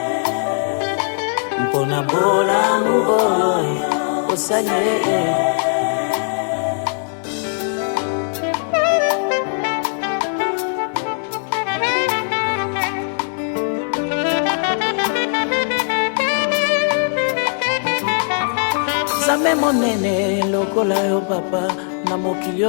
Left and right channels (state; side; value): silent; right; 66 dB below the other